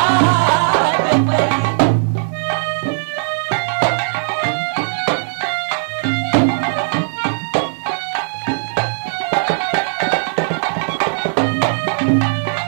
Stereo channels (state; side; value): silent; left; digital silence